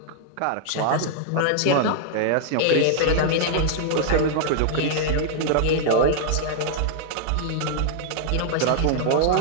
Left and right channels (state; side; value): different; both; correlation -0.01